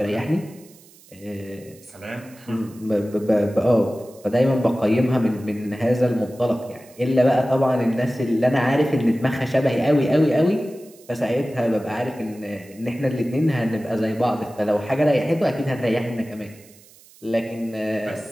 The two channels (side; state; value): right; noise; hiss, 25 dB below the sound